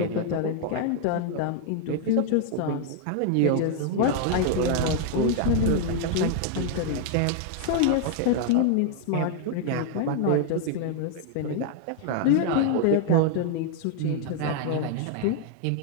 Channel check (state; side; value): different; both; correlation 0.00